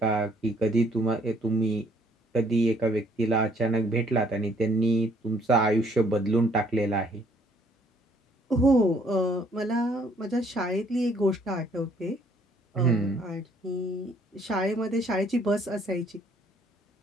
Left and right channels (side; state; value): both; normal; correlation 0.64